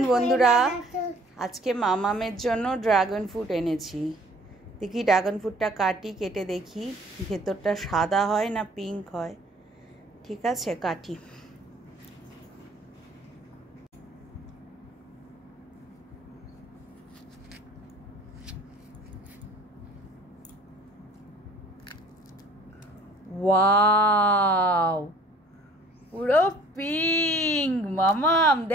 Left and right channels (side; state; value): both; normal; correlation 0.53